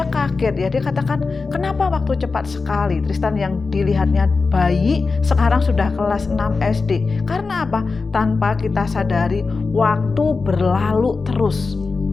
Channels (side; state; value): right; quieter; 4.2 dB